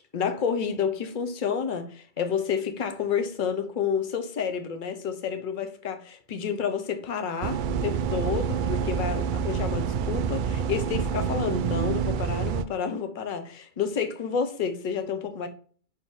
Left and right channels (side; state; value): left; late; 2.3 ms